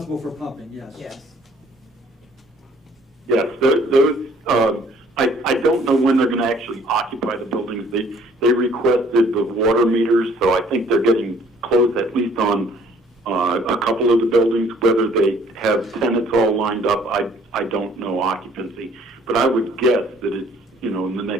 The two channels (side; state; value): both; normal; correlation 0.58